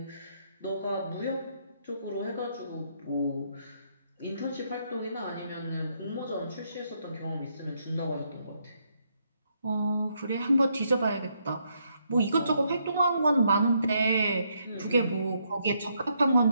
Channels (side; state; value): both; inverted; correlation -0.75